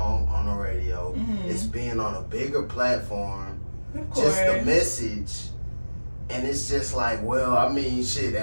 on the radio. Mhm. It's being on a bigger platform. Of course. Just the message, and it's just like, well, I mean, shit.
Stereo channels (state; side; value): inverted; both; correlation -1.00